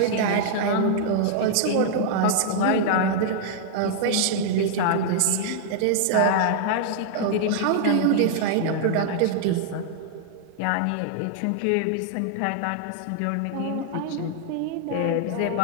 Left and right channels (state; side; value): different; both; correlation -0.01